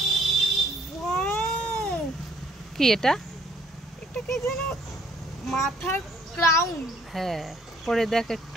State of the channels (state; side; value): normal; both; correlation 0.63